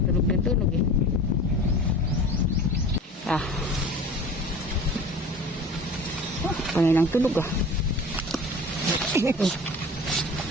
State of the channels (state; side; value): normal; both; correlation 0.40